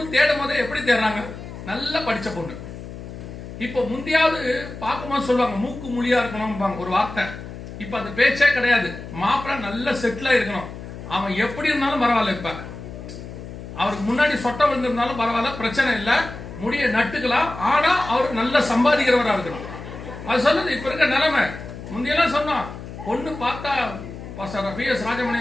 தேடும் போதே எப்படி தேடுறாங்க, நல்லா படிச்ச பொண்ணு. இப்ப முந்தியாவது பார்க்கும்போது சொல்லுவாங்க மூக்கு மொழியா இருக்கணும் ஒரு வார்த்தை. இப்ப அந்த பேச்சே கிடையாது. மாப்பிள்ளை நல்ல செட்டிலா இருக்கணும். அவன் எப்படி இருந்தாலும் பரவாயில்ல, இப்ப அவருக்கு முன்னாடி சொட்ட விழுந்திருந்தாலும் பரவாயில்ல, பிரச்சனை இல்லை, முடிய நட்டுக்கலாம். ஆனா அவர் நல்ல சம்பாதிக்கிறவரா இருக்கணும். அது சொல்லுது இப்ப இருக்க நிலைமை. முந்தையெல்லாம் சொன்னோம், பொண்ணு பார்த்தா PS ராஜமணி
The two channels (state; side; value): noise; left; hum, 11 dB below the sound